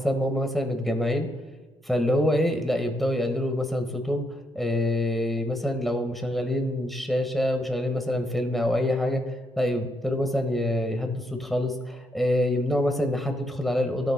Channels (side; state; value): both; normal; correlation 0.77